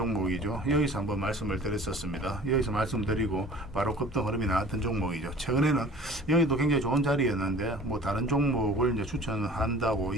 여기서 한번 말씀을 드렸었습니다. 여기서 말씀드리고 바로 급등 흐름이 나왔던 종목이죠. 최근에는 여기도 굉장히 좋은 자리였는데 다른 종목을 이제 추천한다고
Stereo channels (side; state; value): right; noise; hum, 23 dB below the sound